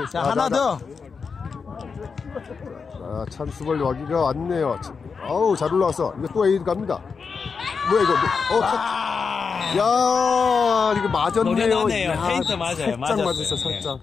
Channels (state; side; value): quieter; right; 5.4 dB